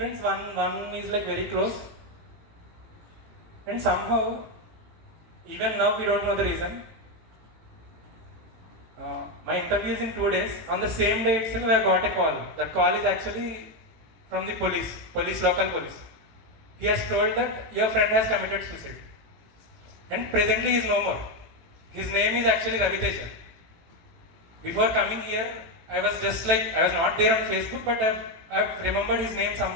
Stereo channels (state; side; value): late; left; 18 ms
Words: one is like very close. And somehow, even now we don't know the reason. My interview is in 2 days. On the same day itself, I got a call. That call is actually from the local police. He has told that your friend has committed suicide. And presently he is no more. His name is actually Ravi Teja. Before coming here, I was not there on Facebook, but I've remembered his name